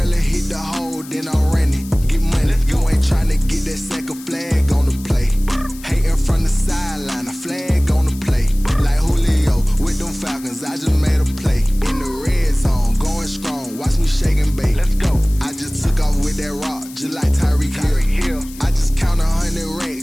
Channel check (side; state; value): left; noise; hiss, 18 dB below the sound